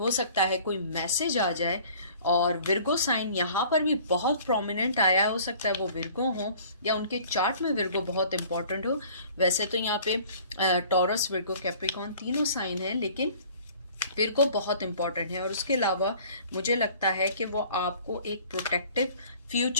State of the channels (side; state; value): both; inverted; correlation -0.50